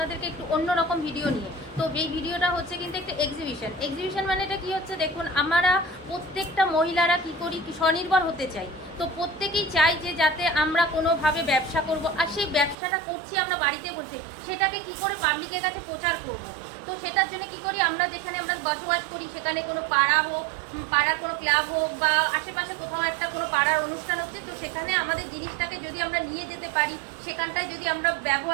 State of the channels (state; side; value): drops out; left; at 12.8 s